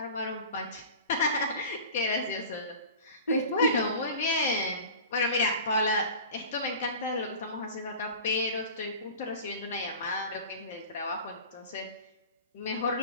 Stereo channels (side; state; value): both; inverted; correlation -0.37